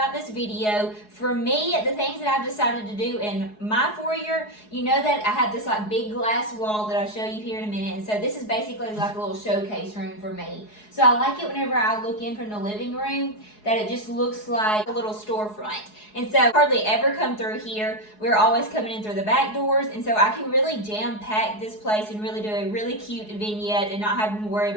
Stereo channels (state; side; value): late; right; 4.7 ms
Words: this video. For me, the things that I've decided to do in my foyer, you know that I have this like big glass wall that I'll show you here in a minute, and so this is basically like a little showcase room for me. So I like it whenever I look in from the living room that it just looks like a little storefront. And so I hardly ever come through here. We're always coming in through the back doors, and so I can really jam pack this place and really do a really cute vignette and not having to worry